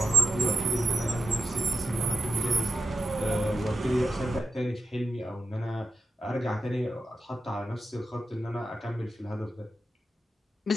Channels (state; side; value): normal; both; correlation 0.89